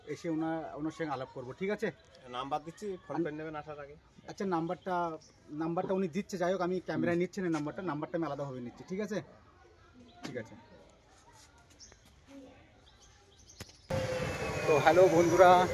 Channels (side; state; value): both; identical; correlation 1.00